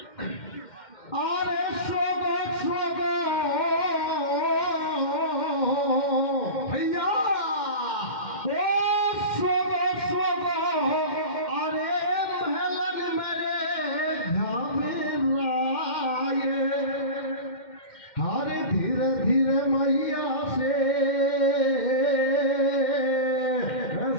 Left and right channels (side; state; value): right; late; 2.1 ms